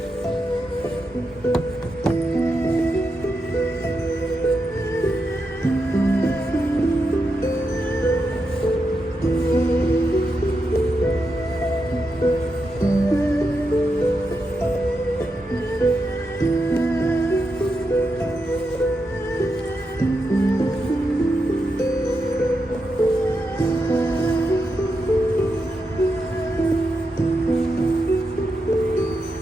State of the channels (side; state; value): both; normal; correlation 0.86